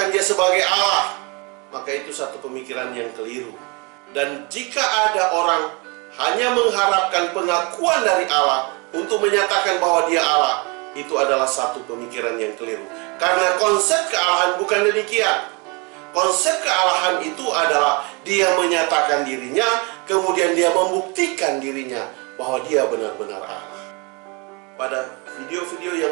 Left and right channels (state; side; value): quieter; left; 30.3 dB